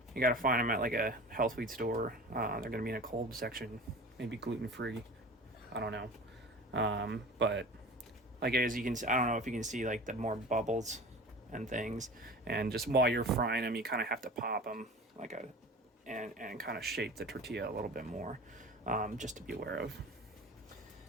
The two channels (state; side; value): normal; both; correlation 0.37